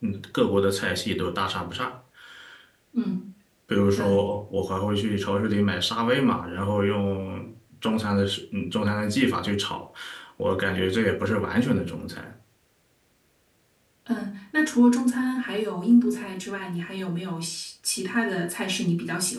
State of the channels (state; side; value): identical; both; correlation 1.00